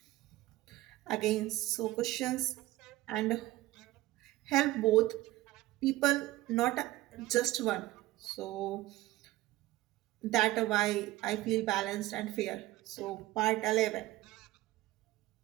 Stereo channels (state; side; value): quieter; left; 17.2 dB